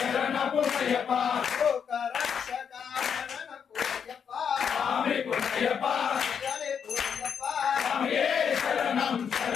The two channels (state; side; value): quieter; right; 7.3 dB